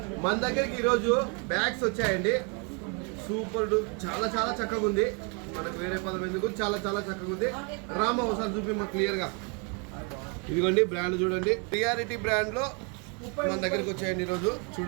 మన దగ్గరికి ఈరోజు బ్యాగ్స్ వచ్చాయండి. సూపర్, చాలా చాలా చక్కగా ఉంది. మనకు వేరే పదం ఎందుకు, చాలా చాలా చక్కగా ఉంది. రామ ఒకసారి చూపి మాకు క్లియర్గా. ఇదిగోండి బ్రాండ్ చూడండి, రియాలిటీ బ్రాండ్లో మన దగ్గరికి వచ్చాయండి ఈరోజు.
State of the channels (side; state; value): left; quieter; 34.7 dB